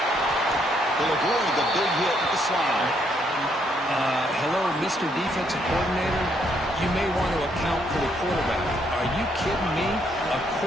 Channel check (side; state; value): both; normal; correlation 0.72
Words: They'll avoid the big hit with the slide. Hello, Mr. Defensive Coordinator. You may want to account for the quarterback. Are you kidding me? A